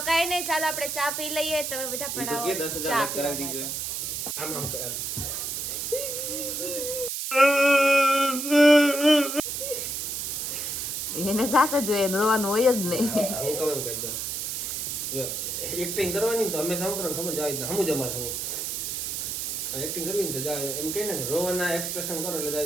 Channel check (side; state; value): right; noise; hiss, 3 dB below the sound